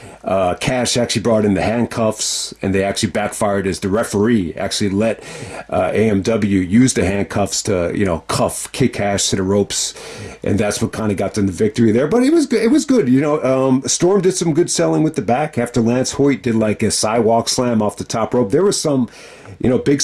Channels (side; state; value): both; identical; correlation 1.00